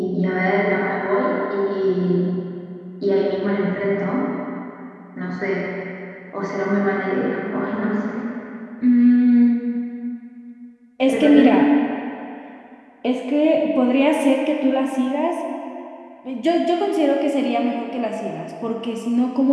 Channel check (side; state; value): both; identical; correlation 1.00